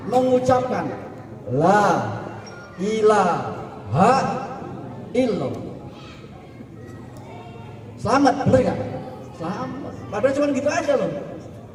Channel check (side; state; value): both; identical; correlation 1.00